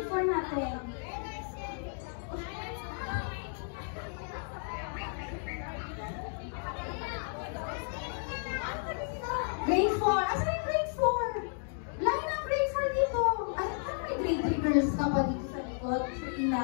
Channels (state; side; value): silent; right; 56 dB below the other